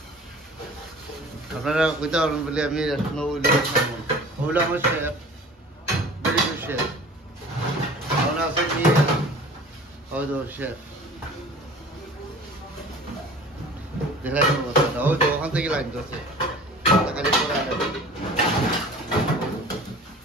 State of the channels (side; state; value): both; normal; correlation 0.43